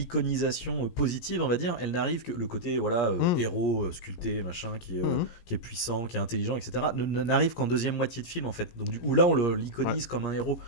positive, on va dire, elle n'arrive que le côté héros sculpté, machin, qui est puissant, qui est intelligent, etc. N'arrive qu'en deuxième moitié de film, en fait. Donc du coup, là, on l'iconise comme un héros.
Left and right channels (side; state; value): right; late; 17 ms